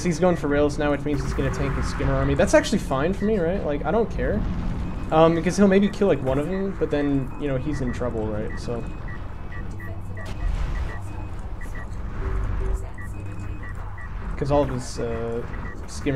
he's going for rails now, which means he's gonna tank his skimmer army. That's actually fine for me, right? Like, I don't care. Because he'll maybe kill, like, one of them, but then, you know, he's in trouble, right? So... Because all of his,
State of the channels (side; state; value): both; identical; correlation 1.00